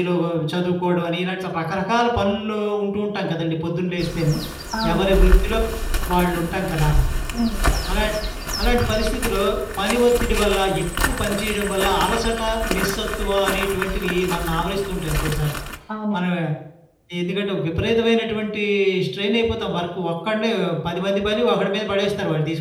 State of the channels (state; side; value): identical; both; correlation 1.00